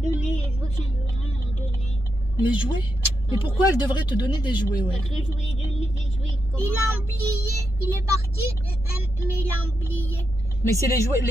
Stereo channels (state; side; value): normal; both; correlation 0.84